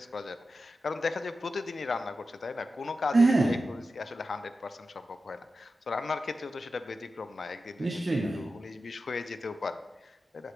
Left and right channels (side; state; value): both; normal; correlation 0.92